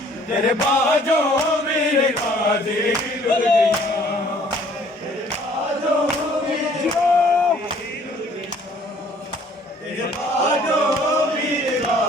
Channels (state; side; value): normal; both; correlation 0.57